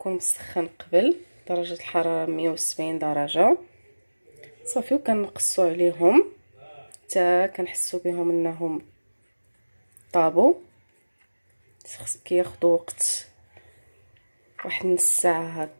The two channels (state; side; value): inverted; both; correlation -1.00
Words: مسخن قبل درجه الحراره 170 درجه. صافي وكنقصوا عليهم حتى كنحسوا بهم انهم طابوا. كياخذوا وقت واحد نص ساعه